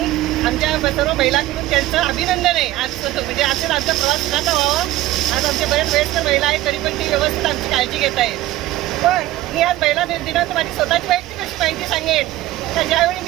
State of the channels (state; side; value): quieter; left; 15.7 dB